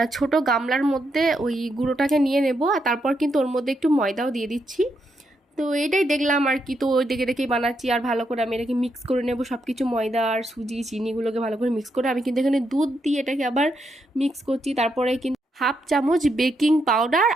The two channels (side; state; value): both; normal; correlation 0.80